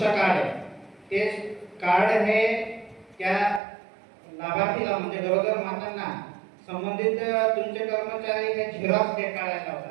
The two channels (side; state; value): left; drops out; at 3.6 s